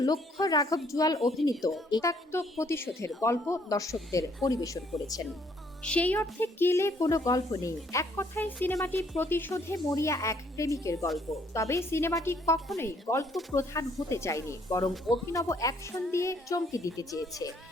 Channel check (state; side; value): normal; both; correlation 0.65